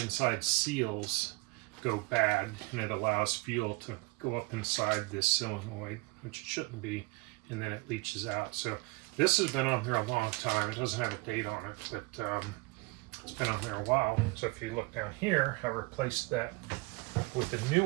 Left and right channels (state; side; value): quieter; left; 25.1 dB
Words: inside seals go bad, and it allows fuel to go up inside this solenoid, which it shouldn't be, and then it leaches out. So this has been on there a long time. It doesn't have a date on it, but it's been on there a while. So if you look down here, I replaced that with a new